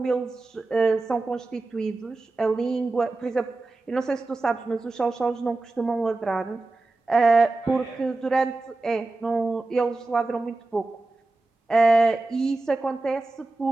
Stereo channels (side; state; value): left; quieter; 3.2 dB